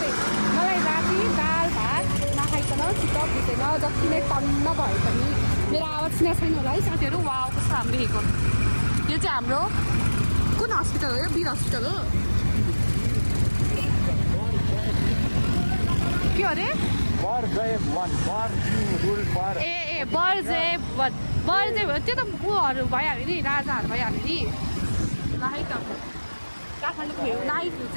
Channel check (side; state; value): both; inverted; correlation -1.00